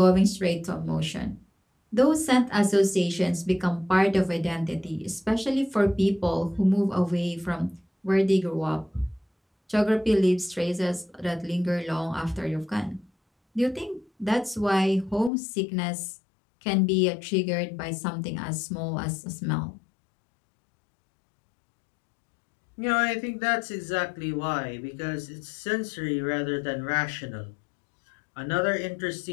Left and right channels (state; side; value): drops out; right; at 15.3 s